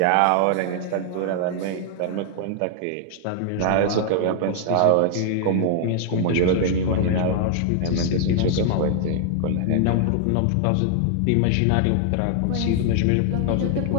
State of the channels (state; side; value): different; both; correlation 0.00